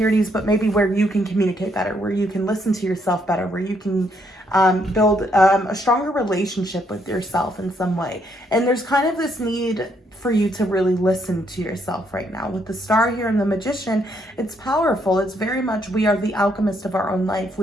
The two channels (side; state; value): both; normal; correlation 0.73